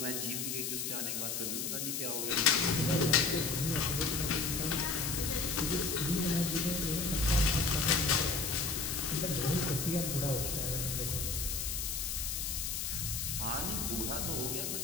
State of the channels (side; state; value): left; noise; hiss, 2 dB below the sound